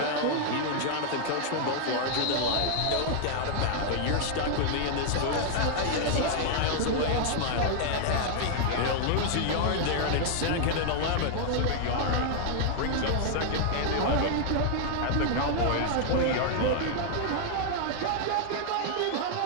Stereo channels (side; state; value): both; different; correlation 0.00